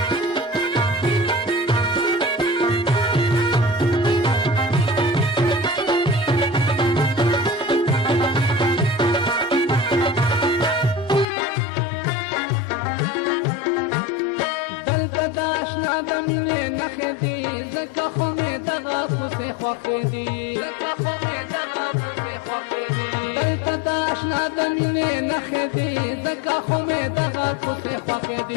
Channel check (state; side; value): drops out; right; at 11.2 s